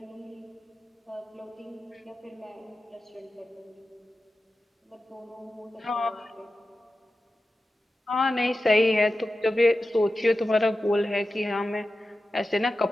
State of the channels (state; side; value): normal; both; correlation 0.93